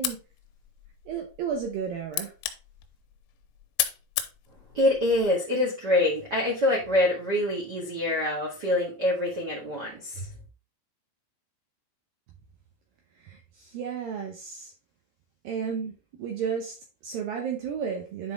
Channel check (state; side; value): late; right; 1.9 ms